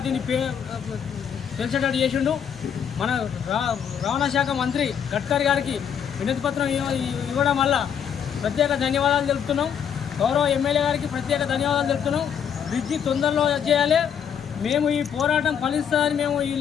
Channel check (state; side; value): quieter; right; 8.1 dB